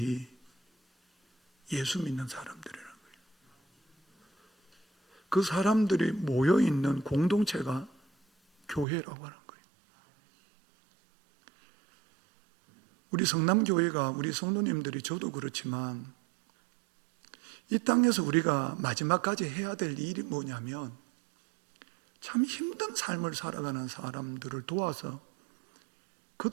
예수 믿는 사람들이라는 거예요. 그 사람들이 모여있는 공동체가 교회라고 하는 거예요. 우리 성남교회가, 우리 성도님들이, 저도 그렇지만 이 땅에서 우리가 마지막까지 해야 될 일이 뭐냐면 참 힘든 삶을 살아가는 사람들을 도와서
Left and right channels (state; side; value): drops out; left; at 8.8 s